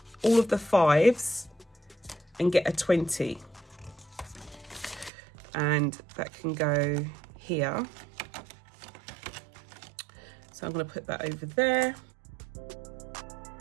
all of the 5s and get a 20. And that can go here. So I'm going to put that over there.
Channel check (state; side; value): drops out; left; at 5.1 s